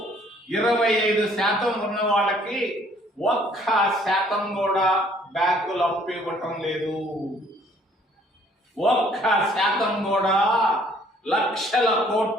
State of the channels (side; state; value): both; normal; correlation 0.60